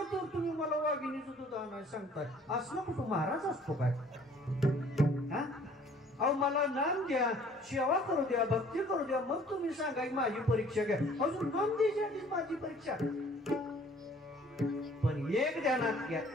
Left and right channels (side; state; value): both; normal; correlation 0.55